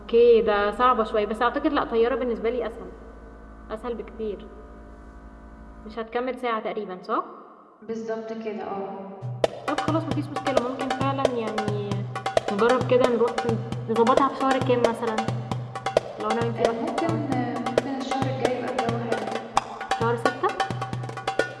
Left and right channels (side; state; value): both; identical; correlation 1.00